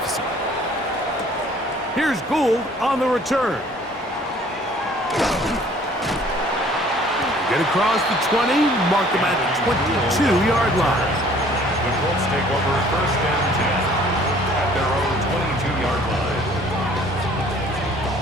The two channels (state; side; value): normal; both; correlation 0.55